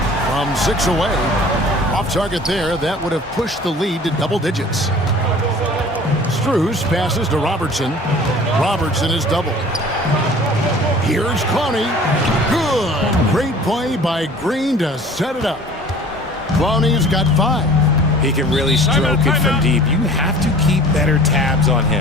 from 6 away. Off target there, that would have pushed the lead to double digits. Strus passes to Robertson. Robertson is doubled. Here's Clowney. Good. Great play by Green to set it up. Clowney's got 5. He can really stroke it from deep. You have to keep better tabs on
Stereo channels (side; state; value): both; normal; correlation 0.46